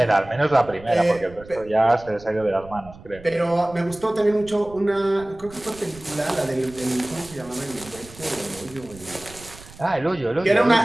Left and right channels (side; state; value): right; noise; rumble, 20 dB below the sound